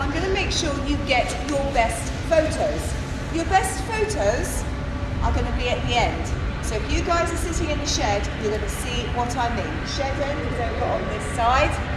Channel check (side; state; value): both; identical; correlation 1.00